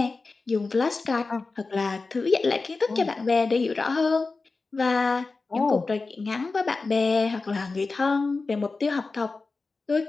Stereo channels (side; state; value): right; quieter; 3.9 dB